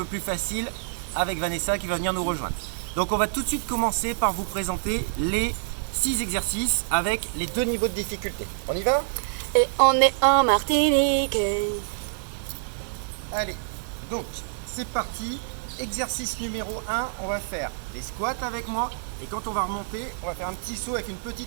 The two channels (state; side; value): silent; left; digital silence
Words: plus facile avec Vanessa qui va venir nous rejoindre. Donc on va tout de suite commencer par vous présenter les 6 exercices avec les 2 niveaux de difficulté. On y va? Et on est en Martinique. Allez, donc c'est parti. Exercice numéro 1, on va faire des squats avec moi et quand on va remonter, on va faire un petit saut avec une